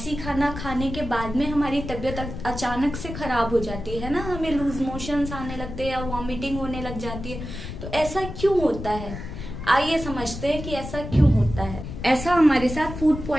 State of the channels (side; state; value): left; noise; rumble, 9 dB below the sound